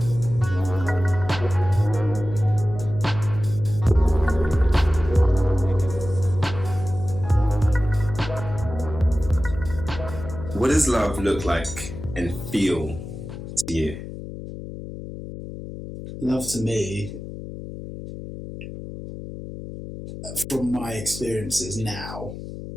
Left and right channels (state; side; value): noise; left; hum, 10 dB below the sound